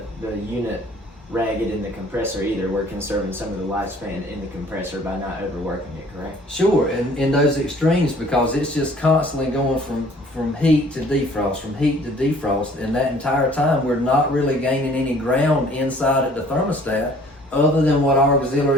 unit ragged in the compressor either. We're conserving some of the lifespan in the compressor by not overworking it, correct? Sure, and in those extremes, because it's just constantly going from heat to defrost, from heat to defrost, and that entire time we're not really gaining any ground inside at the thermostat other than what our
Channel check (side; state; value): both; normal; correlation 0.54